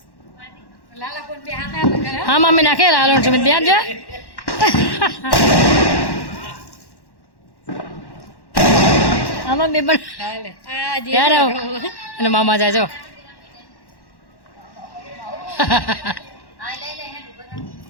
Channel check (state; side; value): late; right; 1.1 ms